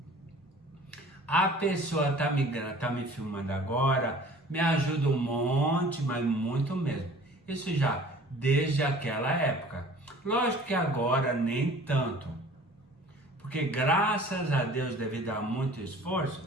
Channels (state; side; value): normal; both; correlation 0.47